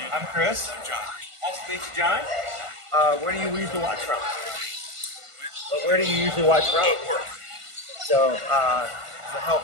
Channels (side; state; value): left; late; 1.5 ms